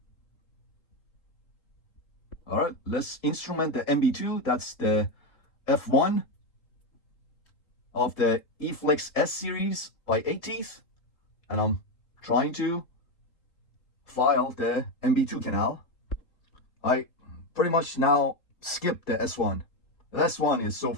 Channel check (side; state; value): right; late; 3.8 ms